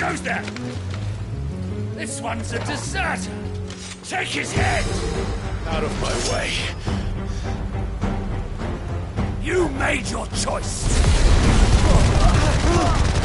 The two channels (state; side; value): identical; both; correlation 1.00